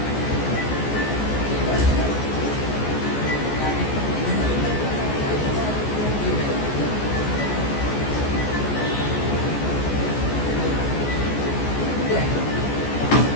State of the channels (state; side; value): late; right; 14 ms